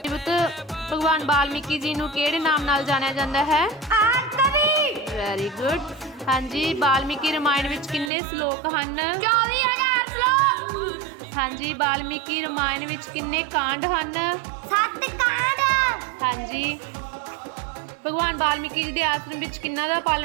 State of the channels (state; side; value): drops out; left; at 8.1 s